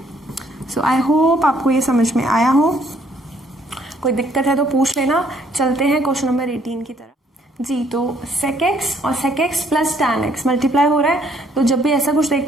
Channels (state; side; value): normal; both; correlation 0.65